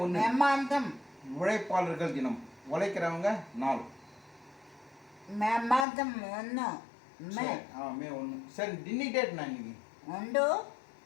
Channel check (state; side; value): drops out; right; at 5.9 s